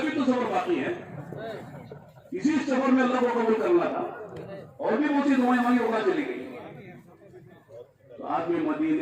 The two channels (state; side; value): identical; both; correlation 1.00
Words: تو سفر باقی ہے. اسی سفر میں اللہ کو قبول کرنا تھا, اور بھی بہت سی دعائیں مانگی ہوگا چلی گئی. تو آدمی